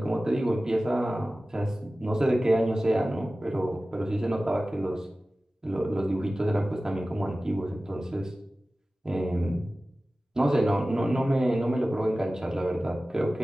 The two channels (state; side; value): normal; both; correlation 0.96